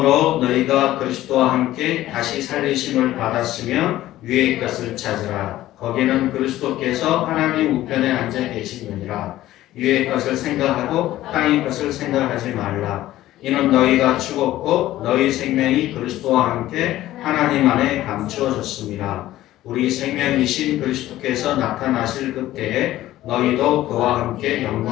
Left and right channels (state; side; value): quieter; right; 14.8 dB